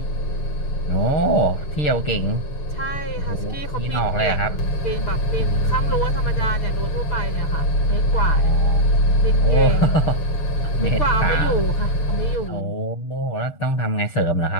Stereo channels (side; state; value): right; late; 6.8 ms